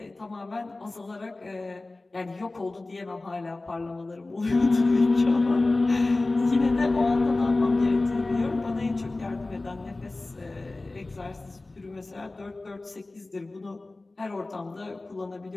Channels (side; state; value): right; quieter; 3.1 dB